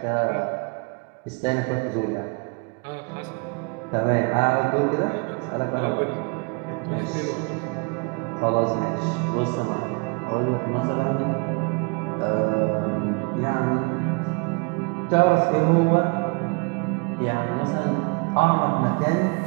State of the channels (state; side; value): quieter; left; 32.6 dB